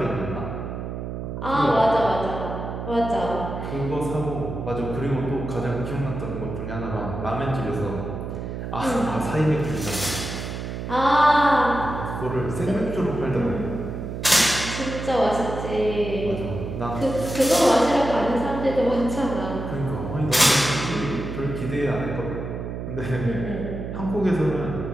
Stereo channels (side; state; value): right; noise; hum, 6 dB below the sound